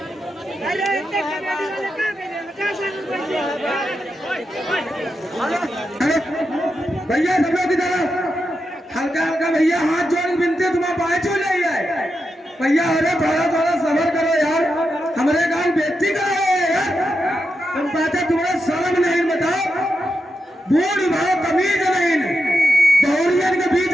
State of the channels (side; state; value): both; normal; correlation 0.87